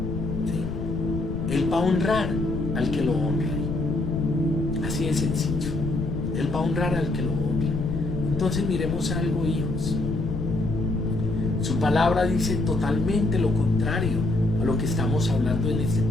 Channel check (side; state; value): left; noise; rumble, 5 dB below the sound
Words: ¿Sí? Él va a honrar al que lo honre. Así de sencillo. Él va a honrar al que lo honre. Entonces miremos algo, hijos. Su palabra dice totalmente lo contrario a lo que estamos hablando en